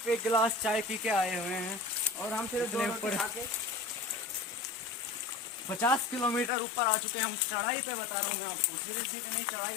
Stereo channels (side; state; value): right; drops out; at 6.5 s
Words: 1 गिलास चाय पी के आए हुए हैं, और हम सिर्फ इतने 2 ऊपर। रोटी खा के 50 किलोमीटर ऊपर आ चुके हैं हम। चढ़ाई पे बता रहा हूँ मैं आपको, सीधे सीधे नहीं, चढ़ाई